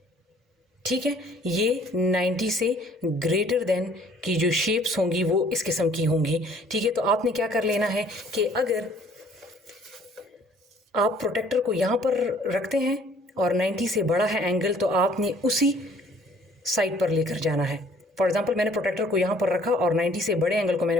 ठीक है, ये 90 से ग्रेटर देन की जो शेप्स होंगी वो इस किस्म की होंगी। ठीक है, तो आपने क्या कर लेना है कि अगर आप प्रोटेक्टर को यहाँ पर रखते हैं और 90 से बड़ा है एंगल, तो आपने उसी साइड पर लेकर जाना है। फॉर एग्जांपल मैंने प्रोटेक्टर को यहाँ पर रखा और 90 से बड़े एंगल को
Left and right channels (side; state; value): both; normal; correlation 0.57